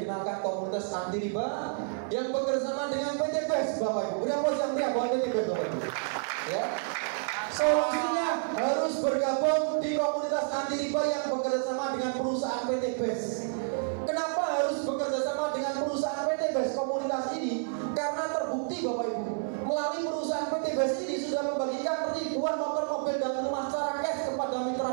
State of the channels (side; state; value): left; silent; 58 dB below the other